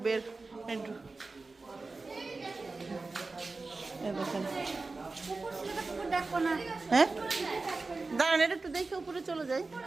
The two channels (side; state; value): left; quieter; 3.7 dB